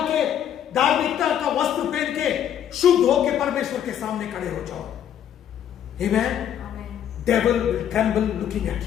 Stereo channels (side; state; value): right; quieter; 9.8 dB